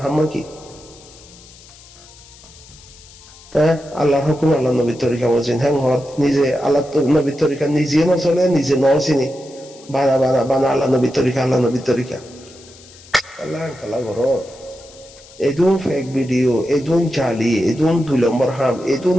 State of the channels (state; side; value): noise; left; hiss, 22 dB below the sound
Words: হাম্মা কি আল্লাহর হুকুম আল্লাহ নবীর তরিকা বলছেন হ্যাঁ নিজে আল্লাহ নবীর তরিকা নিজে না চলে নিজে ন চিনি বানা বানা বানা আল্লাহ নবীর তরিকা আল্লাহ নবীর তরিকা আল্লাহ কালা করো এদুন ফেক ভিডিও এদুন চালি এদুন 2 নম্বর হাম এদুন